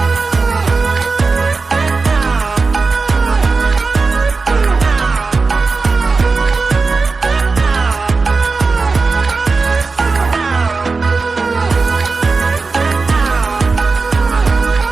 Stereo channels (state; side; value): quieter; left; 4.2 dB